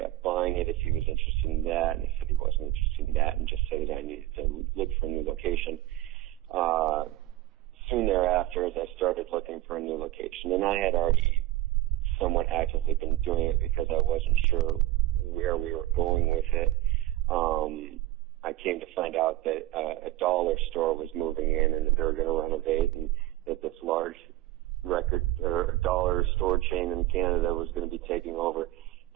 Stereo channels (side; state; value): left; quieter; 16.2 dB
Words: buying it if he was interested in that, and he said he wasn't interested in that and just said that I needed to look for a new location. Soon thereafter, as I started looking for a new location, and I had already somewhat actively been doing it because I wasn't sure where we were going with it, I came to find out that a dollar store was moving in and that they were going to renovate, and that this large record or dollar store chain in Canada was going to be taking over,